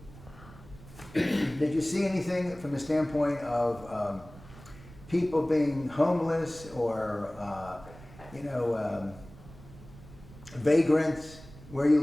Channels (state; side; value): noise; right; rumble, 19 dB below the sound